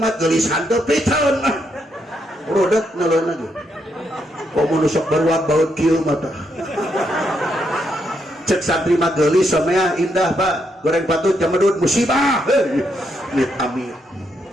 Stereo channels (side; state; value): both; normal; correlation 0.78